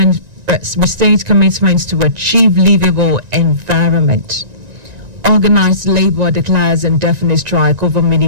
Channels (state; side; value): late; left; 1.9 ms